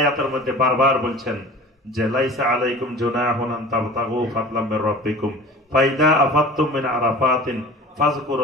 মধ্যে বারবার বলছেন যে লাইসা আলাইকুম জুনাহুন আন তাবতাগু ফাদলাম মির রাব্বিকুম ফাইদা আফাদতুম মিন আরাফাতিন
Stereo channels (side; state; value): both; normal; correlation 0.40